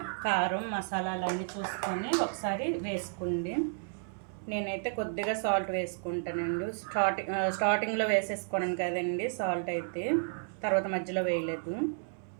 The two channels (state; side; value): silent; left; 56 dB below the other